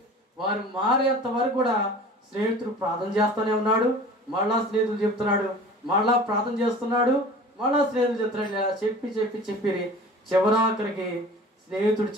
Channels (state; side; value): normal; both; correlation 0.42